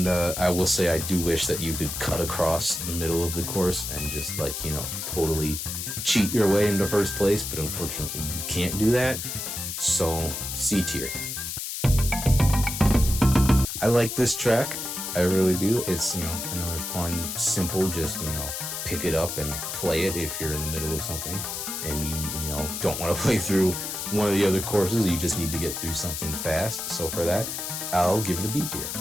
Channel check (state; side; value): noise; left; hiss, 5 dB below the sound